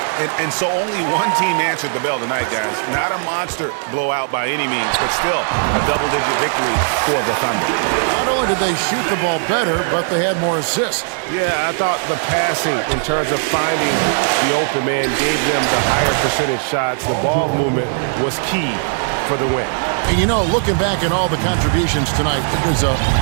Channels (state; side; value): silent; left; digital silence